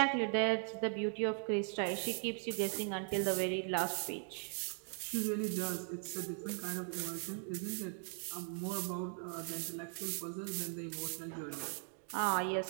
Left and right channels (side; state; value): left; silent; 52 dB below the other